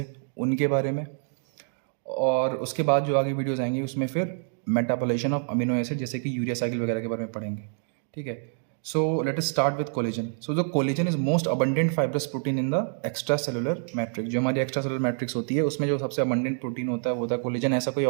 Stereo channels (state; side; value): silent; left; 60 dB below the other